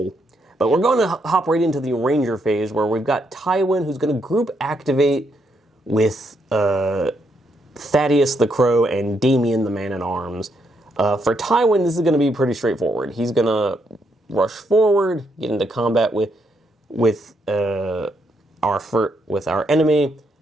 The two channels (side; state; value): both; normal; correlation 0.77